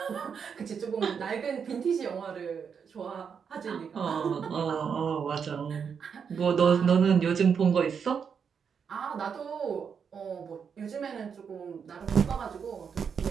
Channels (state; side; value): quieter; left; 6.7 dB